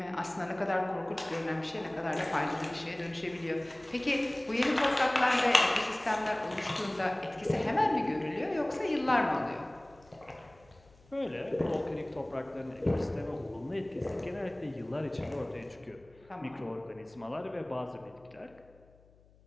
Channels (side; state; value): left; noise; hum, 28 dB below the sound